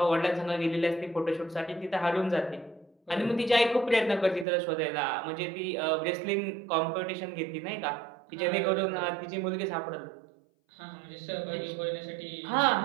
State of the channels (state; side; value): drops out; left; at 4.5 s